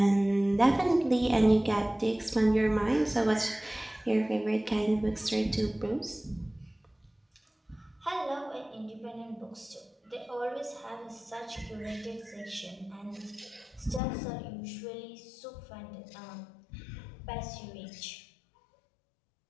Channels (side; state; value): right; drops out; at 14.0 s